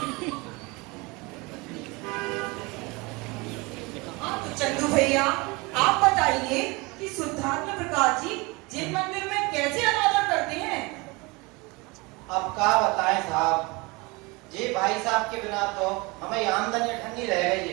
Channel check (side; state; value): left; quieter; 25.6 dB